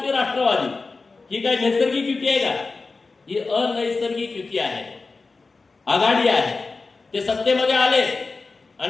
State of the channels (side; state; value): right; quieter; 4.0 dB